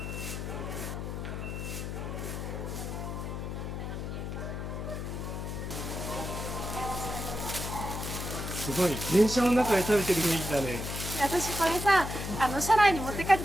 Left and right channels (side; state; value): left; noise; hum, 5 dB below the sound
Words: すごい電車の中で食べてる雰囲気だね。私これさ車内に持って帰って